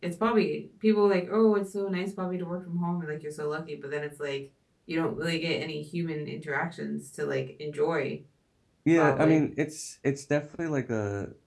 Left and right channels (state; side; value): identical; both; correlation 1.00